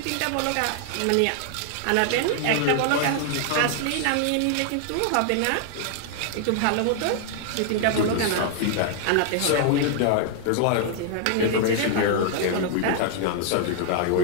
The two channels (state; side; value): different; both; correlation 0.00